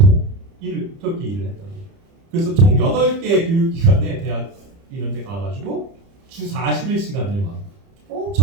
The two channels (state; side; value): late; left; 30 ms